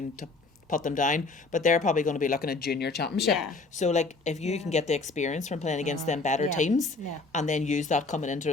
to put them down, but they're probably going to be looking at junior championship. So if you can get the experience from playing against them better teams, and then use that coming into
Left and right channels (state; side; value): quieter; right; 3.6 dB